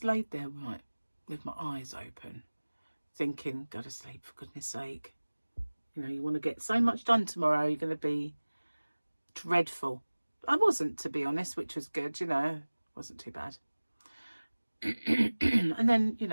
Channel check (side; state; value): both; inverted; correlation -1.00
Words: laid there right with my eyes open, thinking, go to sleep for goodness sake. You know, you want to get so much done tomorrow, you're going to be dreadful. I wasn't, to be honest, which was good, you know, wasn't too bad. And then, you